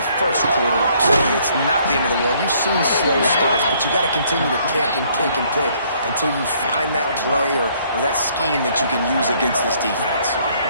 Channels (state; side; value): inverted; both; correlation -0.64